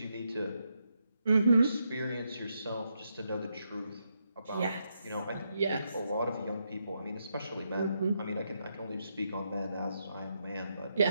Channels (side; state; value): both; inverted; correlation -0.81